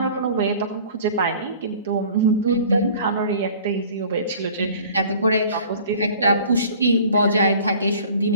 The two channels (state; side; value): inverted; both; correlation -0.47